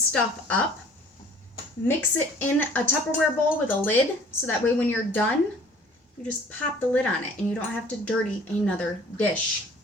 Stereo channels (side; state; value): both; normal; correlation 0.52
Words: stuff up, mix it in a Tupperware bowl with a lid so that way when you're done, you just pop the lid on it and you don't have to dirty another dish.